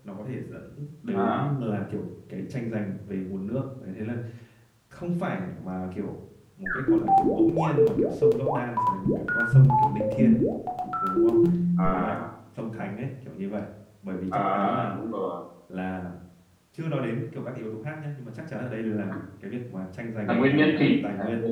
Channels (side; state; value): both; identical; correlation 1.00